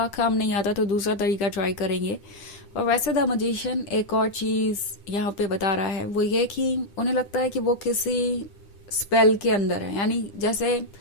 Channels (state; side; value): late; right; 9.9 ms